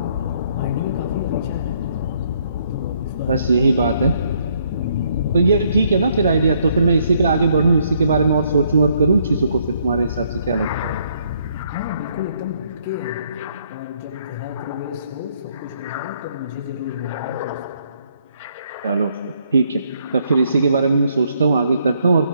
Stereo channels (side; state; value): both; inverted; correlation -0.69